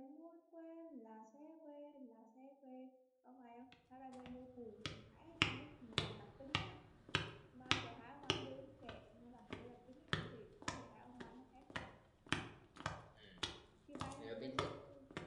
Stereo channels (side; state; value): both; identical; correlation 1.00